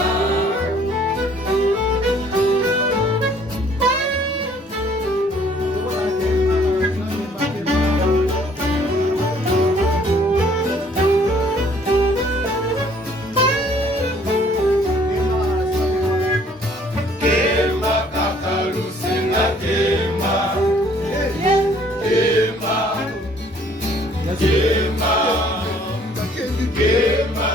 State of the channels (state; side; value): normal; both; correlation 0.59